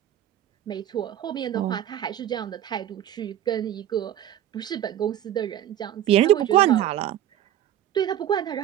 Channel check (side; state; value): left; quieter; 11.4 dB